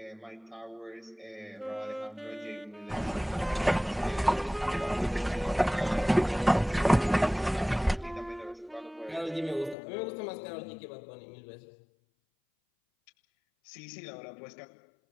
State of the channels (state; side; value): drops out; right; at 9.8 s